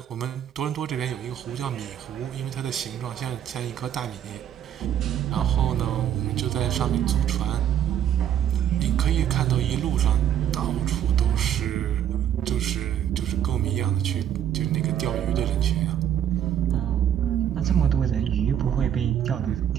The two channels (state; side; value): quieter; left; 10.1 dB